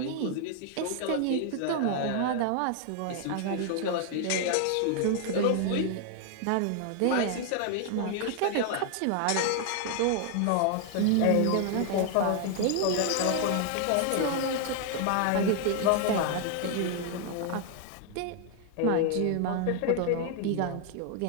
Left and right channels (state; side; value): different; both; correlation 0.00